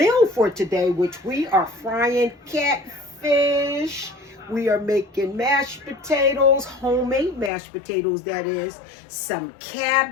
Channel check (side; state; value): right; drops out; at 7.5 s